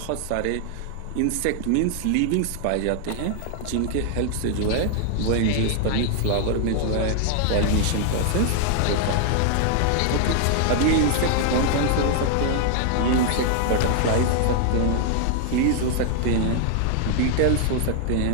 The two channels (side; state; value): both; different; correlation 0.00